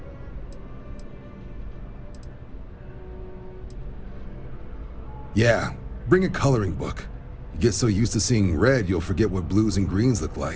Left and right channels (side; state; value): both; identical; correlation 1.00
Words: Yeah, bring a coloring book. You get so used to seeing red, you'll forget what blues and greens look